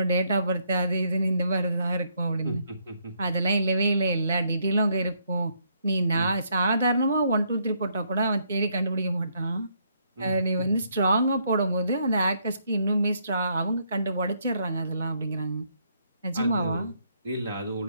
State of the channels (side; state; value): both; inverted; correlation -0.73